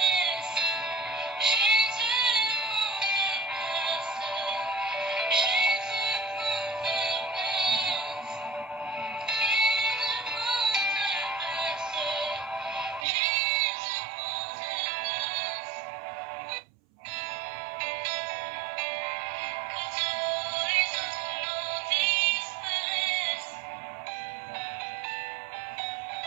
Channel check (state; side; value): drops out; left; at 13.1 s